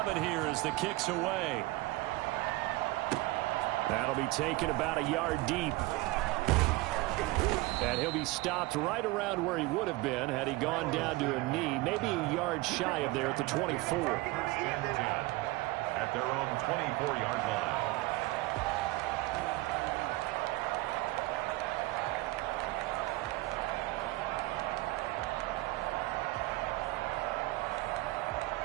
here as the kick's away. That'll be taken about a yard deep. And he'll be stopped right around where he would have been had he gone down to a knee, maybe a yard shy of there at the 24. At their own 24-yard line.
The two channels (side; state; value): left; quieter; 20.3 dB